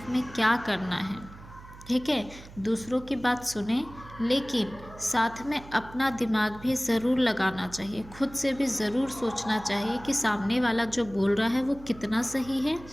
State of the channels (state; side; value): noise; right; hum, 18 dB below the sound